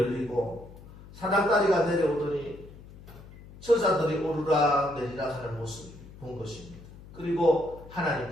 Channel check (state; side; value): noise; left; hum, 18 dB below the sound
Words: 사닥다리가 내려오더니 천사들이 오르락 내리락 하는 모습을 본 것입니다. 그리고